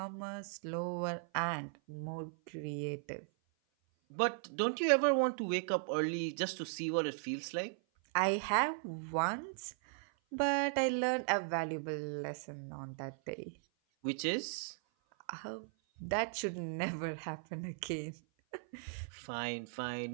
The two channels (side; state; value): left; silent; 53 dB below the other